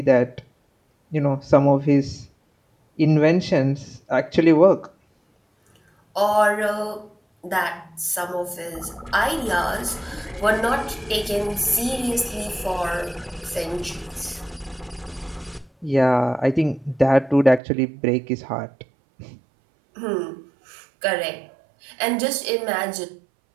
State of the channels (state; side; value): drops out; left; at 17.6 s